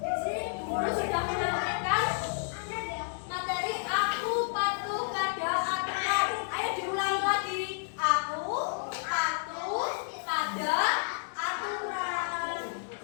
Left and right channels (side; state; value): right; silent; digital silence